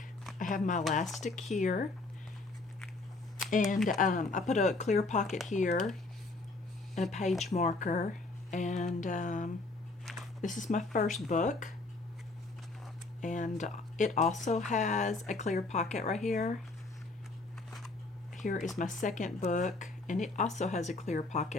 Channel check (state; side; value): quieter; right; 3.3 dB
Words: I have my elastic here, and I put a clear pocket here and a page marker, and this is my first book. And it also has a clear pocket right here. Here is my second book, and it also has a clear